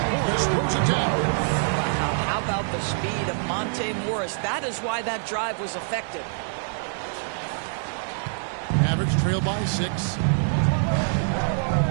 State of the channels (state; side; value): silent; left; digital silence